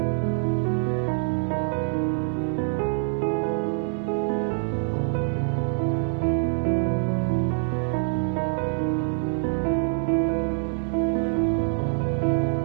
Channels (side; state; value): left; silent; digital silence